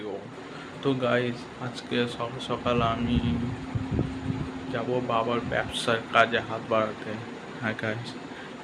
তো guys, আজকে সকাল সকাল আমি যাব বাবার ব্যবসার কাজে হাত বাড়াতে। হ্যাঁ গাইজ,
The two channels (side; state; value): both; identical; correlation 1.00